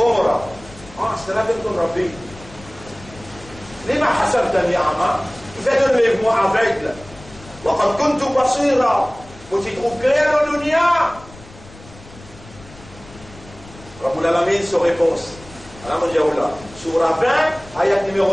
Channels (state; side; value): noise; left; rumble, 20 dB below the sound